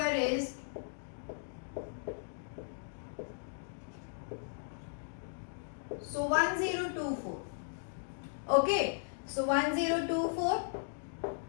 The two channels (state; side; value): silent; right; digital silence